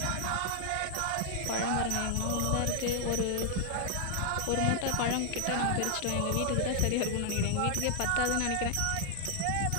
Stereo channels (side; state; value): both; different; correlation 0.00